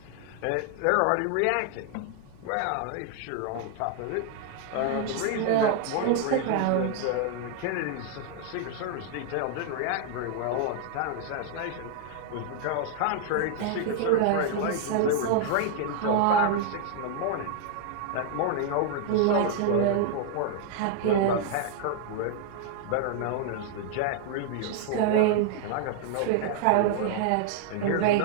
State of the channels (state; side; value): different; both; correlation 0.00